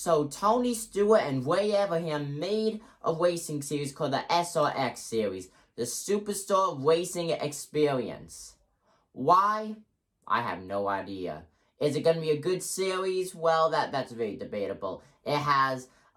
Tony Stewart and Ray Abraham made a racing series called the SRX series, the Superstar Racing Experience. Why? I have no idea. Is it going to be a good series? Well, that's very debatable. It has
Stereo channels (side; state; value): both; identical; correlation 1.00